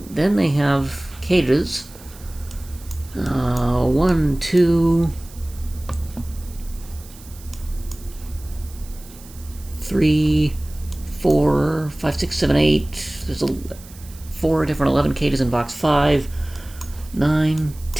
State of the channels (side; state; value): right; noise; hiss, 21 dB below the sound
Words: Then they have cages. 1, 2, 3, 4, 5, 6, 7, 8. There's 4 different 11 cages in box 5, 9,